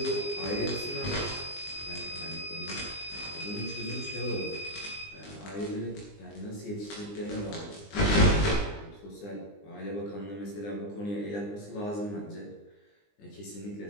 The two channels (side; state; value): right; late; 20 ms